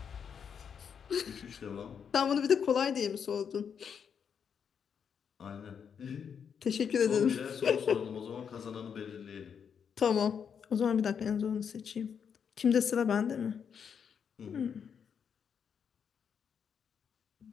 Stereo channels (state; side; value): quieter; right; 7.2 dB